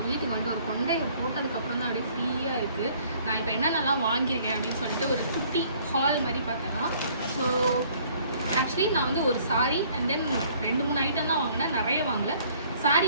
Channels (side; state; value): both; inverted; correlation -0.58